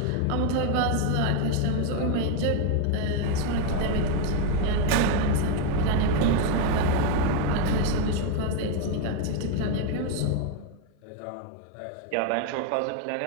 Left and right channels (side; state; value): both; different; correlation 0.01